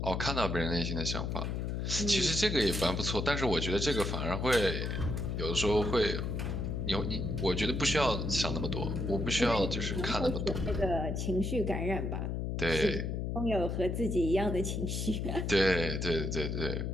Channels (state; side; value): noise; left; hum, 2 dB below the sound